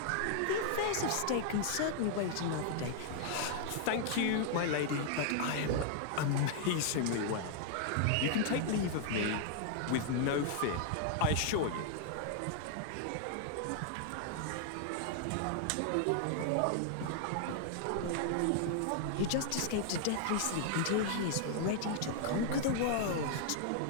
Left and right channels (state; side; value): different; both; correlation 0.00